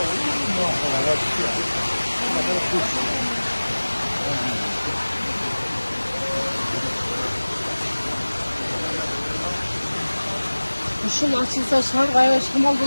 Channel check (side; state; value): both; inverted; correlation -1.00